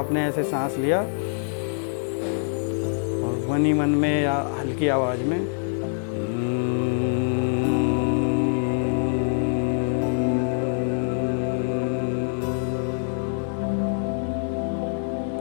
ऐसे सांस लिया और मन ही मन में या हल्की आवाज़ में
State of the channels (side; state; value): right; silent; digital silence